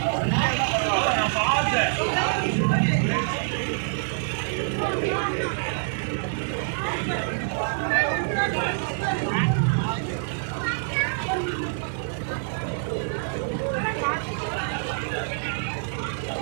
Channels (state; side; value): silent; left; digital silence